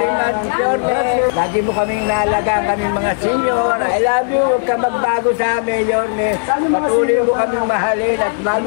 Yorme. Lagi mo kaming naalagaan kaming mga senior. I love you, huwag ka magbago sa amin, Yorme. Patuloy mo kaming mahalin at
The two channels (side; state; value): right; silent; digital silence